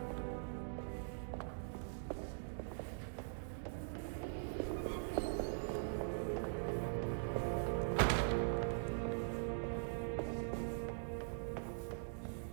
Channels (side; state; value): left; silent; digital silence